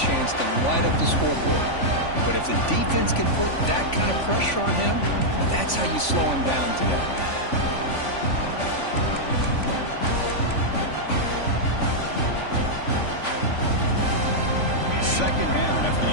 to light up the scoreboard. But if the defense can put that kind of pressure on him, that's how you slow him down today. Second down after the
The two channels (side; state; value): right; late; 3.5 ms